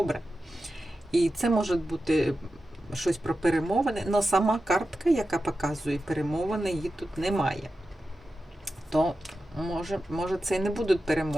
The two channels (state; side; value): normal; both; correlation 0.91